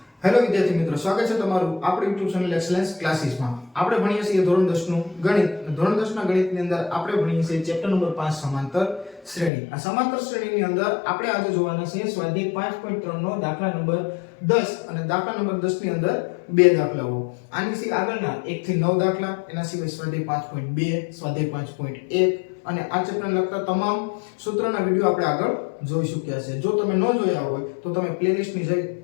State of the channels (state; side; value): drops out; right; at 9.5 s